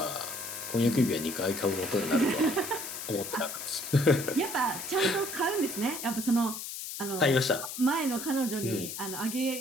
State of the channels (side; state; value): left; noise; hiss, 7 dB below the sound